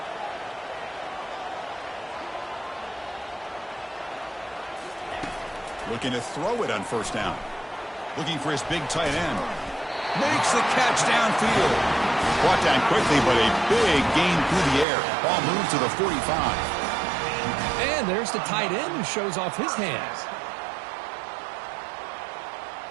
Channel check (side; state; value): left; drops out; at 14.9 s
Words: Looking to throw it on first down. Looking for his big tight end. Makes the catch downfield. Brought down quickly, but a big gain through the air. Ball moves to the 45. And there's the tight end who shows off his hands.